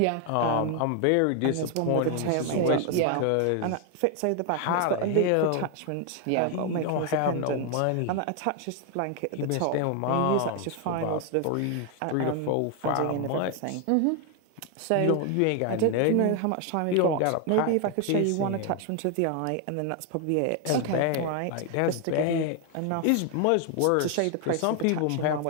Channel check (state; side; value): different; both; correlation 0.01